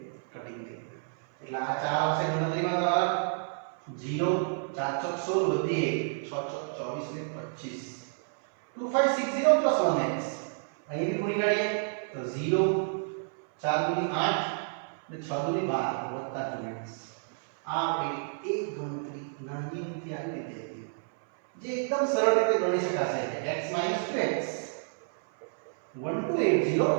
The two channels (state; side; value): silent; left; 57 dB below the other